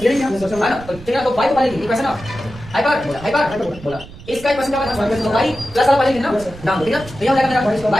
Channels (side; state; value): right; noise; rumble, 16 dB below the sound